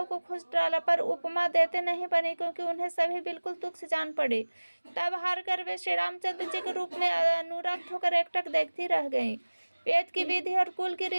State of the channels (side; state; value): both; inverted; correlation -1.00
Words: को खोज डाला, पर उपमा देते नहीं बनी, क्योंकि उन्हें सभी बिल्कुल तुच्छ जान पड़ी। तब हार कर वे श्री रामचंद्र जी के रूप में अनुरक्त होकर एकटक देखती रह गईं। वेद की विधि और कुल की